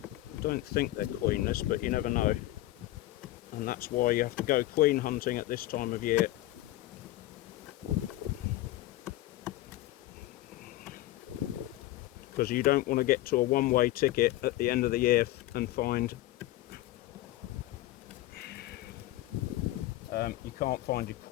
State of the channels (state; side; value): quieter; right; 16.2 dB